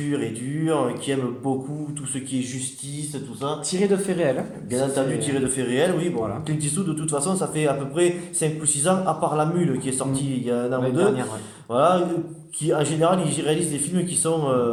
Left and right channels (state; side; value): identical; both; correlation 1.00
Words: et dur qui aime beaucoup tout ce qui est justice, tout ça. Tiré de faits réels, hein. Bien Ça entendu, c'est... tiré de faits réels, oui. Bon, Voilà. Clint Eastwood, de toute façon, ça fait à peu près 5 ou 6 ans, à part La Mule qui est Mm. sortie il y a un an ou L'année deux. dernière, ouais. Voilà, qui en général, il réalise des films qui sont